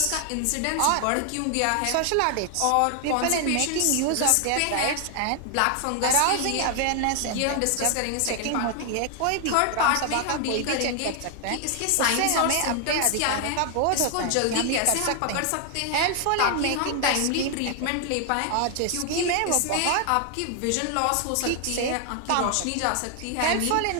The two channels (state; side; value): different; both; correlation 0.00